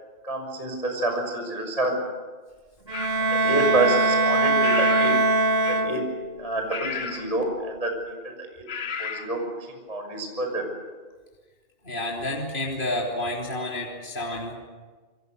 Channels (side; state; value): right; late; 2.5 ms